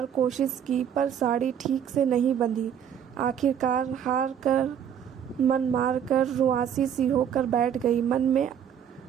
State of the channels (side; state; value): left; quieter; 8.8 dB